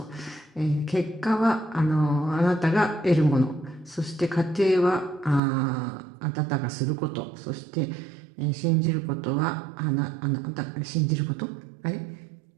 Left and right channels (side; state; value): left; drops out; at 5.4 s